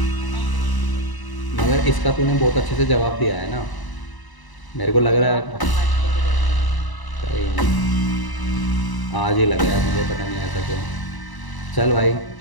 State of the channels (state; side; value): late; right; 1.0 ms